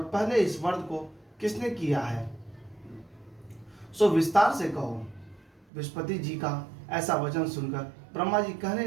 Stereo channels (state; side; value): drops out; left; at 5.7 s